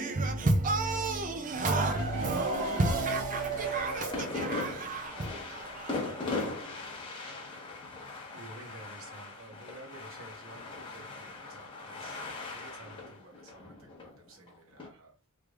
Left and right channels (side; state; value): both; normal; correlation 0.33